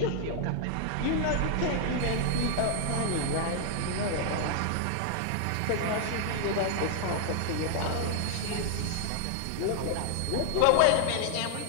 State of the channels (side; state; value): both; different; correlation 0.00